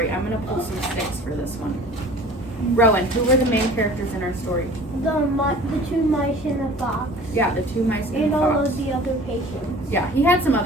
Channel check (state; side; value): normal; both; correlation 0.45